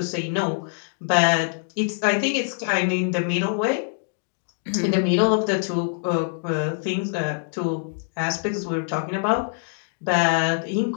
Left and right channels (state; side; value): silent; right; digital silence